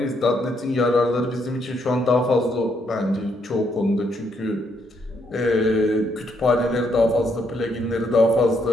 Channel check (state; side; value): normal; both; correlation 0.74